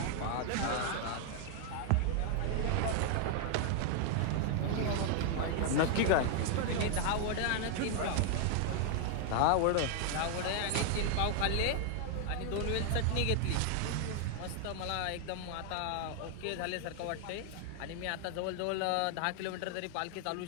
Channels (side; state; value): both; different; correlation 0.00